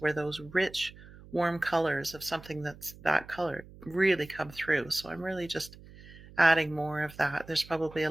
those rich, warm colors of something that's that color really come through. So I'm really just adding more of that. There's probably a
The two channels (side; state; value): right; noise; hum, 20 dB below the sound